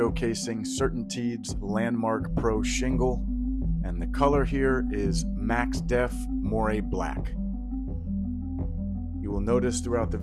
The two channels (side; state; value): both; identical; correlation 1.00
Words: CertainTeed's Landmark Pro shingle, and the color here is Max Def Moire Black. You will notice throughout the